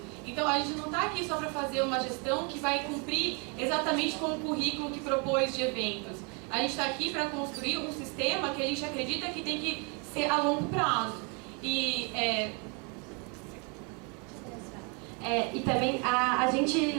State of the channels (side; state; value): left; quieter; 34.0 dB